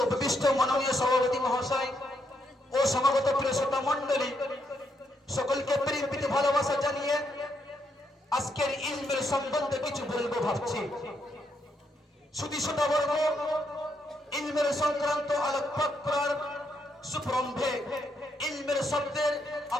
উপবিষ্ট মাননীয় সভাপতি মহাশয় ও সমাগত প্রিয় শ্রোতা মণ্ডলী, সকলকে প্রেম প্রীতি ভালোবাসা জানিয়ে আজকের ইলমের সম্বন্ধে কিছু বলবো ভাবছি। শুধু শ্রোতাবর্গ, ইলমের সংক্রান্ত আলোকপাত করার সুপ্রম্ভে ইলমের শব্দের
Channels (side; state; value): both; normal; correlation 0.77